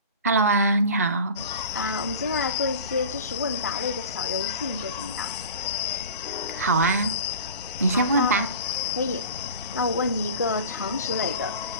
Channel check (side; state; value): both; inverted; correlation -0.37